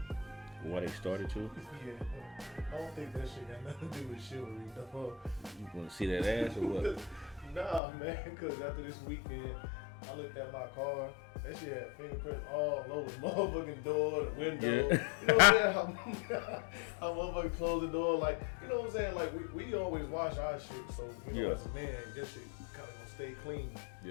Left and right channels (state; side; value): drops out; right; at 7.8 s